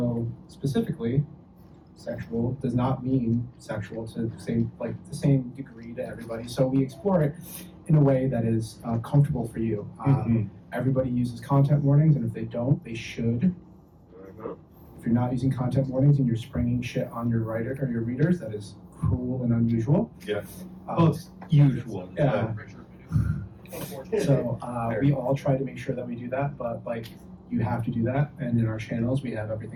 specifically, sexual does not mean sexual to the same degree to everybody. So we explore it in a way that is comfortable for you. Everybody uses content warnings, and if they don't, they should. If you're not using content warnings and you're springing shit on your writer or your readers, that is cruel and unusual. Yeah. Well, it's usual. Yeah. So we all try to make sure that we do that, but you have to do that. And in our channels, we have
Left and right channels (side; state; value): both; identical; correlation 1.00